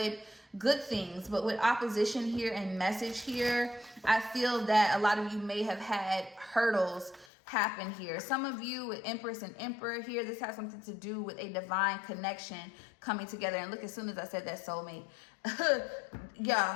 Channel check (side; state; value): right; drops out; at 7.2 s